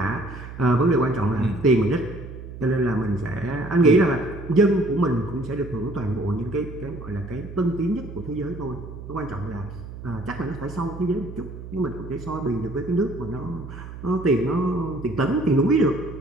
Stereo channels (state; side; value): noise; right; hum, 12 dB below the sound